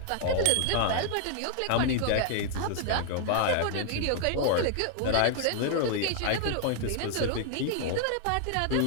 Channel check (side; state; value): both; different; correlation 0.00